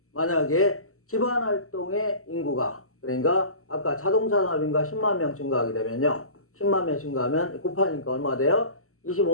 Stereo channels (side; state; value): right; late; 0.63 ms